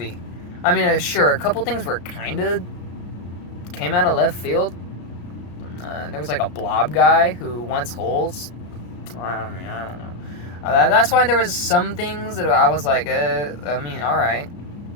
I mean, sure, a couple things were kind of came out of left field. There was like a blob guy who wants holes. I don't know. That's why there was some things that I was like, alright.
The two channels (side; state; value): right; late; 34 ms